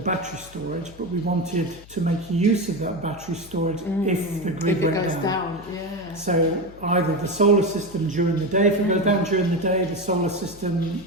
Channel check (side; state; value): left; noise; hum, 21 dB below the sound